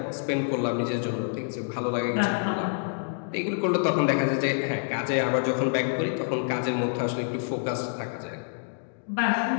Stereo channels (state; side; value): silent; right; digital silence